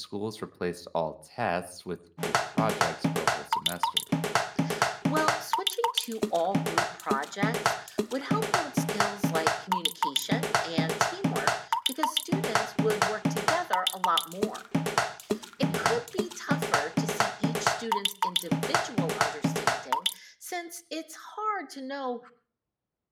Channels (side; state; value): both; identical; correlation 1.00